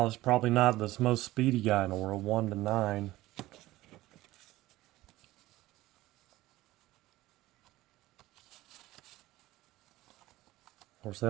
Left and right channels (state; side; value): quieter; left; 17.2 dB